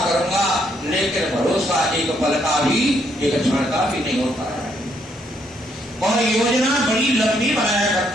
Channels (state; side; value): normal; both; correlation 0.73